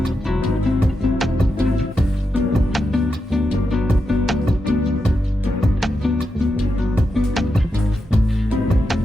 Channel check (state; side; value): normal; both; correlation 0.87